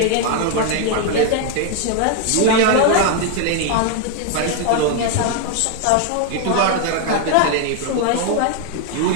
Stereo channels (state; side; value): different; both; correlation 0.01